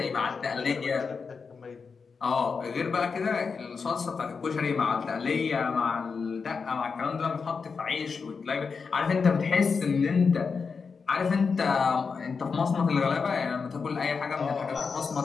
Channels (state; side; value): quieter; right; 5.3 dB